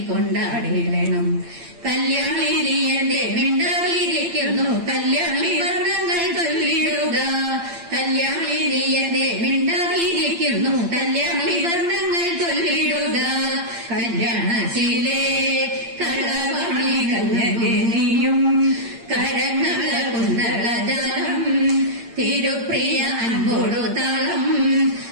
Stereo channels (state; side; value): late; left; 8.8 ms